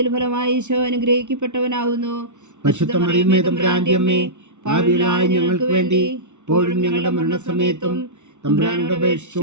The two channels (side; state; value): left; late; 0.83 ms